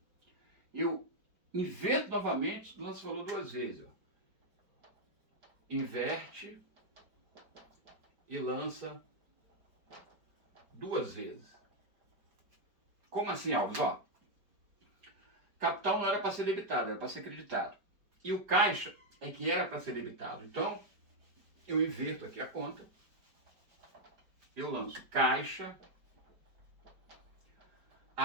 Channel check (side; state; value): left; late; 4.8 ms